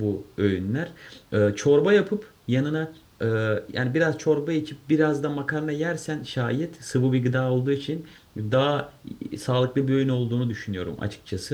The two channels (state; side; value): identical; both; correlation 1.00